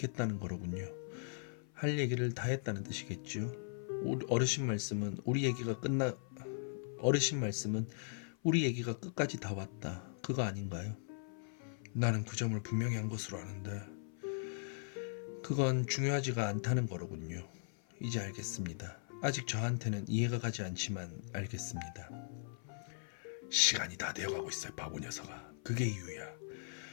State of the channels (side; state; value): right; silent; 52 dB below the other